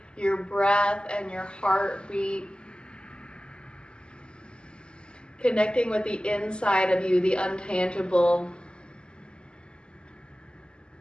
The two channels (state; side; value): late; right; 0.050 ms